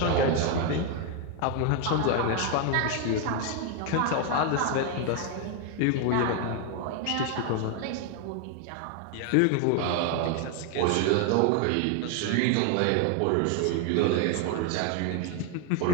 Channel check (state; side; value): different; both; correlation 0.01